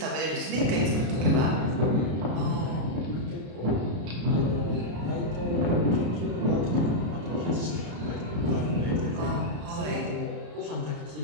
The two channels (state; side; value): late; left; 33 ms